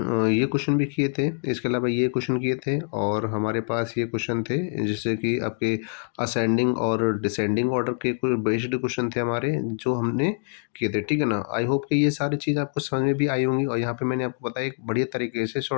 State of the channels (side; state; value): right; silent; 61 dB below the other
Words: भी किए थे, इसके अलावा ये क्वेश्चन किए थे, और हमारे पास ये क्वेश्चन थे जैसे कि आपके असेंडिंग और डिसेंडिंग ऑर्डर के कोई बेस्ड क्वेश्चन थे हमारे, जो हमने किए थे, ठीक है ना। आई होप कि ये सारी चीज़ आपको समझ में भी आई होंगी। और यहाँ पे मैंने आपको बताया एक बढ़िया तरीके से,